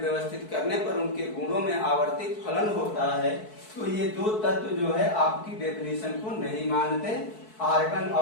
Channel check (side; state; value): right; late; 4.6 ms